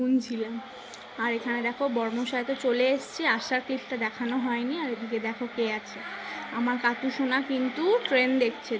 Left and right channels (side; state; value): both; identical; correlation 1.00